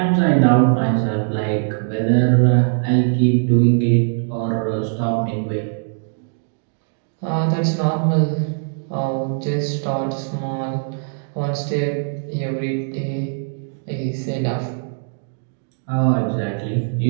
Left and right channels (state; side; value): silent; left; digital silence